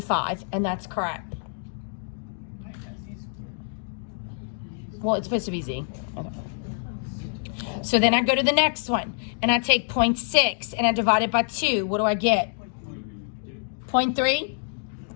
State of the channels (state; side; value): silent; right; 61 dB below the other